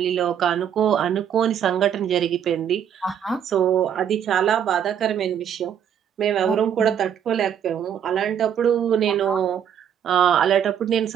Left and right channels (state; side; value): quieter; left; 8.8 dB